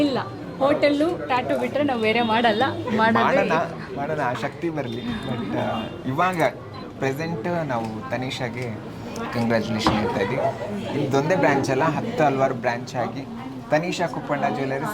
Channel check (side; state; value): both; identical; correlation 1.00